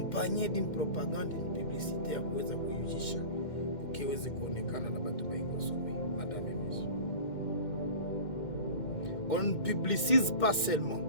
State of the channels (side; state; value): right; late; 2.1 ms